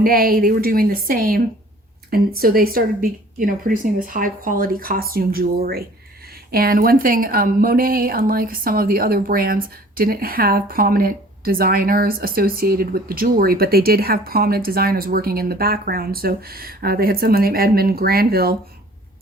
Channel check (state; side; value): normal; both; correlation 0.51